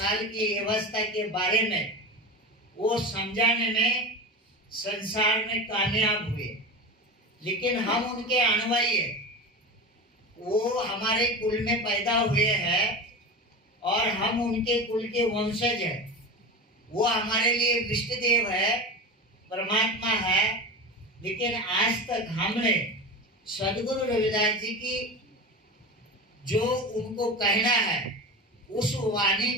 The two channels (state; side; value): normal; both; correlation 0.27